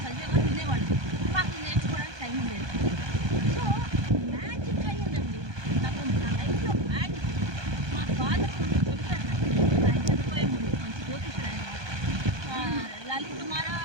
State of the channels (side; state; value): left; late; 1.2 ms